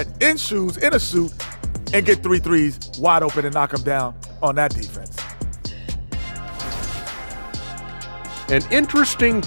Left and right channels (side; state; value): both; inverted; correlation -1.00